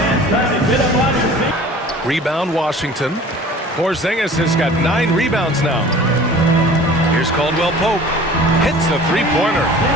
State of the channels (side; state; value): both; normal; correlation 0.45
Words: time to get up on your feet. Rebound, Washington. Porziņģis has got 9 rebounds now. Here's Caldwell Pope. Hits the three-pointer.